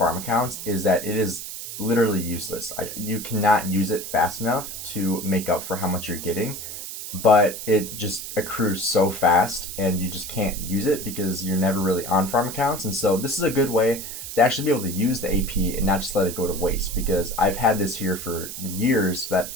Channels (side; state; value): right; noise; hiss, 9 dB below the sound